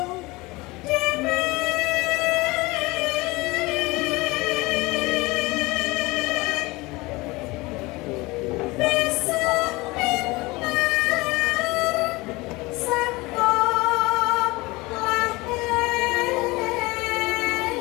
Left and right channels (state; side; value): quieter; right; 22.5 dB